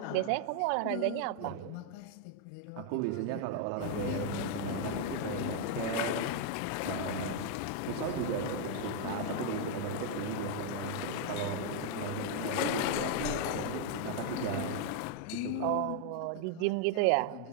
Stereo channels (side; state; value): both; different; correlation 0.00